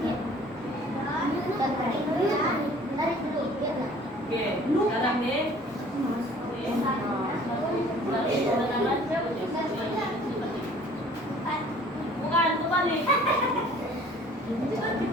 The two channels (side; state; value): both; normal; correlation 0.52